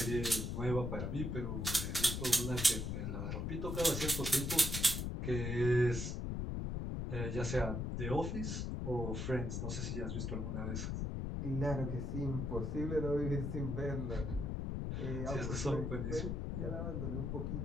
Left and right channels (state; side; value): noise; left; rumble, 2 dB below the sound